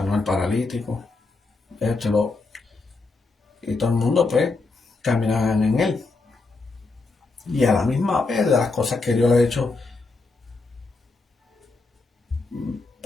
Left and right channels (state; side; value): quieter; right; 3.7 dB